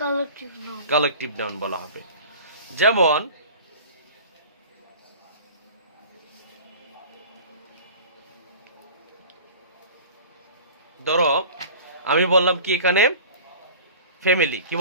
Collective noun. কালেকটিভ নাউন বলা হবে। যেমন ধরো আমি বললাম কি এখানে ফ্যামিলি, কি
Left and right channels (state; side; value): inverted; both; correlation -0.41